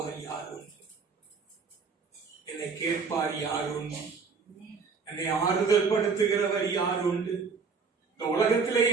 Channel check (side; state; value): left; quieter; 5.2 dB